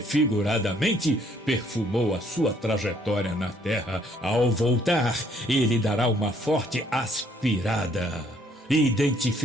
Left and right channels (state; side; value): normal; both; correlation 0.65